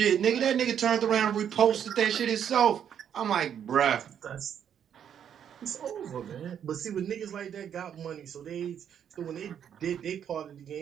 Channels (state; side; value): quieter; left; 8.8 dB